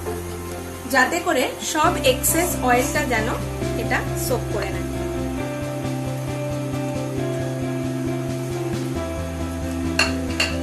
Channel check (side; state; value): both; identical; correlation 1.00